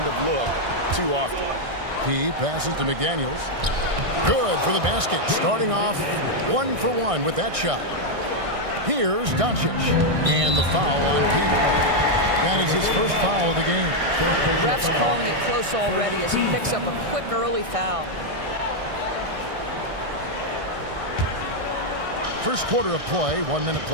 of look too often. P passes to McDaniels. Good for the basket. Starting off 1 for 1 with that shot. Here's Doncic. And the foul on P. That is his first foul of the game. Ref's calling it close already as he picks up a quick early foul. First quarter of play, 1 minute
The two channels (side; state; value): left; late; 1.6 ms